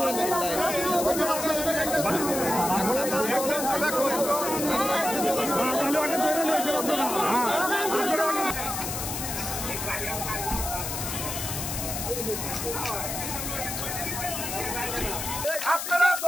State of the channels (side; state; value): left; noise; hiss, 4 dB below the sound